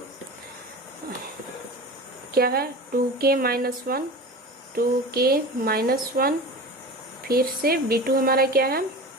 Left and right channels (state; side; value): normal; both; correlation 0.33